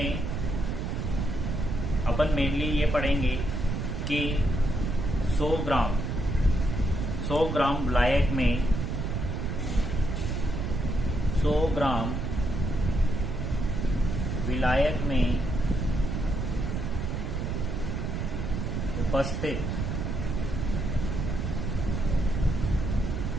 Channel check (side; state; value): right; noise; rumble, 2 dB below the sound